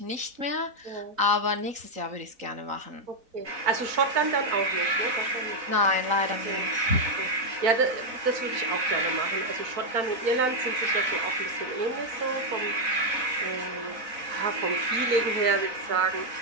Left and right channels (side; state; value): left; late; 4.0 ms